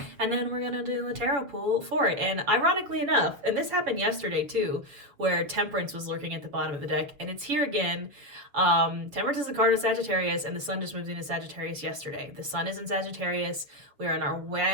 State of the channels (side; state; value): left; late; 7.2 ms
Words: And then we're going to do a tarot pull for it. And ironically enough, and this happened yesterday too, where Temperance was lurking at the bottom of the deck, and it's here again. Temperance is the card of Sagittarius, and the sun just moved into Sagittarius yesterday. The sun is in Sagittarius. We are in our